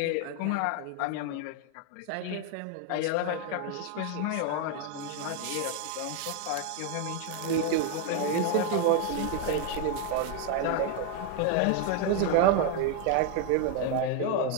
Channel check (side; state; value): both; different; correlation 0.01